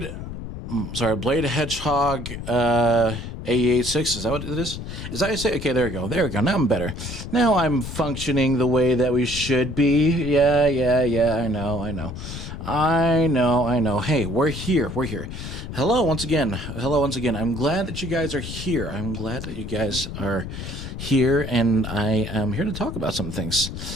Hedgehog, AE86, is that what it is? Is that how you say? Okay, there we go. Now I'm better. Now I'm functioning the way that we should be. Yeah, I know. Hey, we're here. Hello once again. I'm glad that you guys are here. And I am here to talk about some things.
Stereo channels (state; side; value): noise; left; rumble, 8 dB below the sound